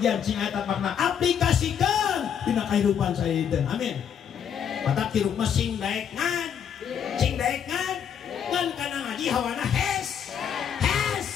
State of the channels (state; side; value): quieter; right; 8.2 dB